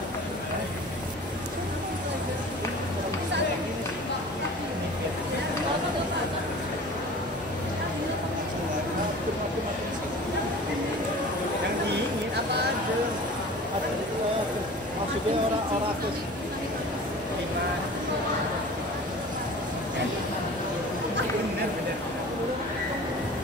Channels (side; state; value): both; normal; correlation 0.41